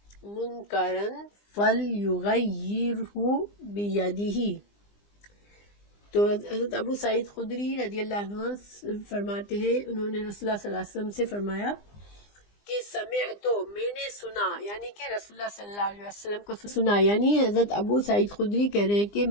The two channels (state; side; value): late; right; 20 ms